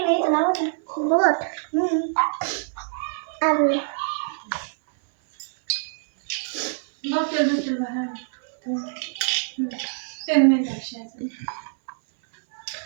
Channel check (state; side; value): silent; left; 62 dB below the other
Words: ना, इथं लावा ना. बोट. आलं.